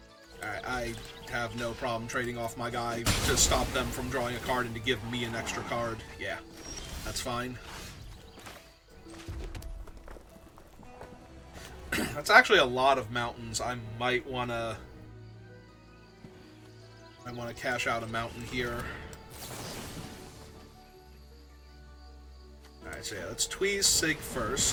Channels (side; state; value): both; identical; correlation 1.00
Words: Alright, I have no problem trading off my guy to stop them from drawing a card and to give me an extra card. Yeah, that's fine. That's actually a lot of mountains. I might wanna cash out a mountain here. Alright, so yeah, let's tweeze Sig